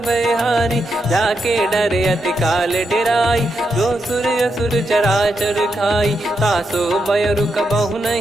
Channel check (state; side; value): normal; both; correlation 0.83